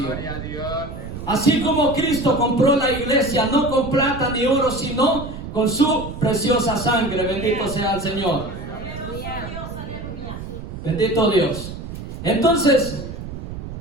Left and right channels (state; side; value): noise; right; rumble, 9 dB below the sound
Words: Así como Cristo compró la iglesia, no con plata ni oro, sino con su preciosa sangre. Bendito sea el Señor. Bendito Dios. Entonces,